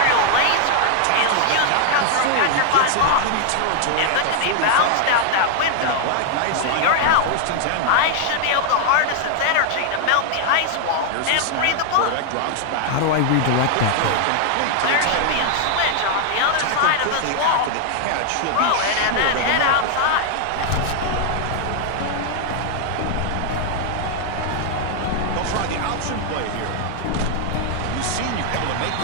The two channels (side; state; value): both; different; correlation 0.00